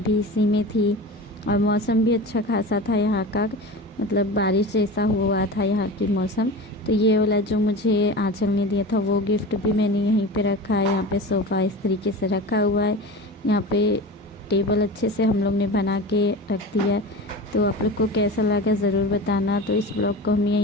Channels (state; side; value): normal; both; correlation 0.31